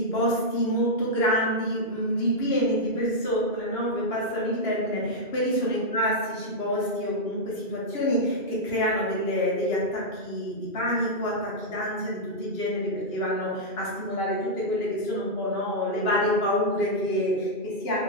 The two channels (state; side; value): late; right; 2.9 ms